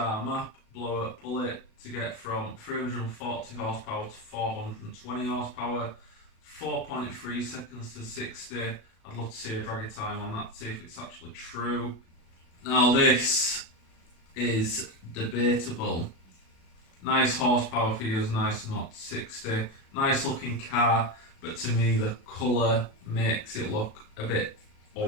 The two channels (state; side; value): late; right; 37 ms